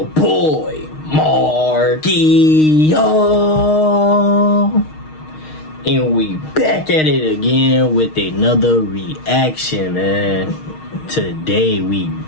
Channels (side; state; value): right; late; 6.4 ms